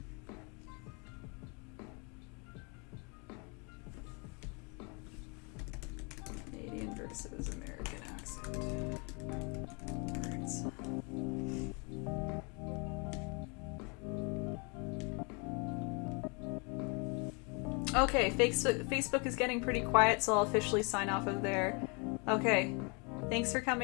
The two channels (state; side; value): quieter; right; 32.9 dB